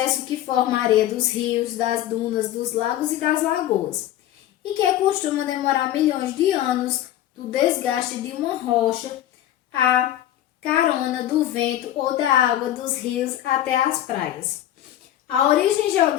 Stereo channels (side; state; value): right; quieter; 12.7 dB